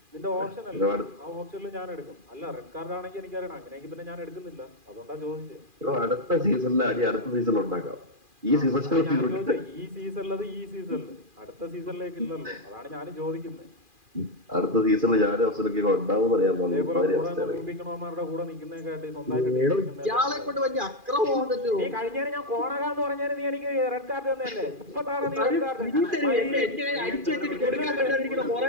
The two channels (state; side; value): late; left; 2.4 ms